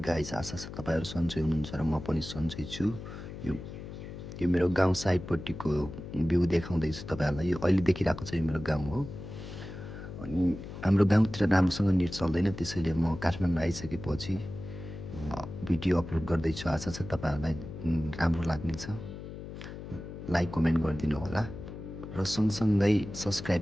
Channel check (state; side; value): noise; left; hum, 11 dB below the sound